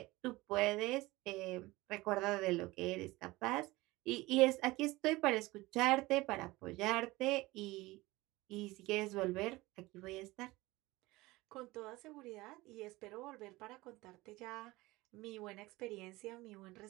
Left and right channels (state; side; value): quieter; left; 20.4 dB